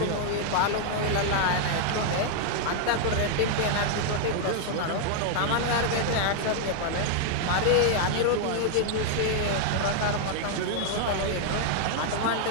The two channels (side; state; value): both; different; correlation 0.00